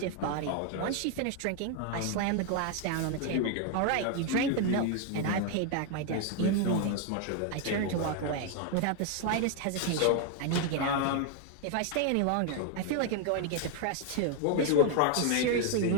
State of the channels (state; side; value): different; both; correlation 0.01